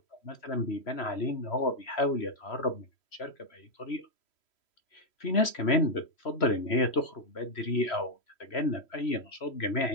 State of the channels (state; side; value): late; right; 3.1 ms